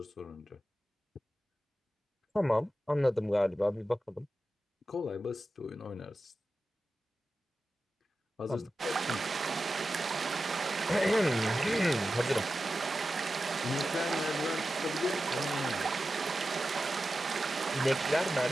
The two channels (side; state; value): both; normal; correlation 0.92